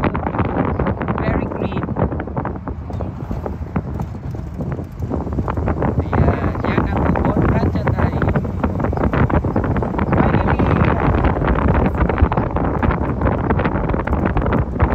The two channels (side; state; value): both; identical; correlation 1.00